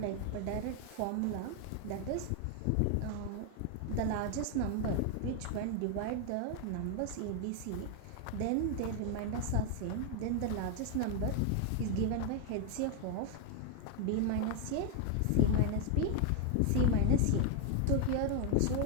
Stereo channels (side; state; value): both; different; correlation 0.01